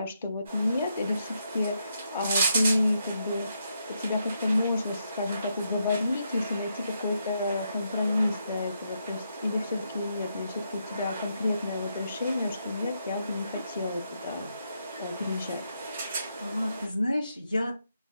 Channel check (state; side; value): inverted; both; correlation -0.80